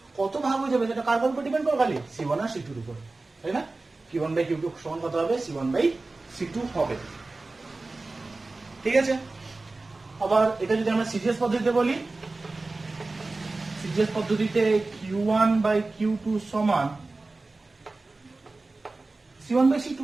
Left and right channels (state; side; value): quieter; left; 3.3 dB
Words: কত ভাগ হয়ে যাবে সেটা কার উপর ডিপেন্ড করে, খালি C1 আর C2 এর উপর, তাই না? Q1 বাই Q2 সমান কত হবে, C1 বাই C2 হবে। ঠিক আছে, আবার এটা যদি আমরা সিজিএস পদ্ধতিতে বলি, সিজিএস পদ্ধতিতে Q1 বাই Q2 সমান C1 বাই C2,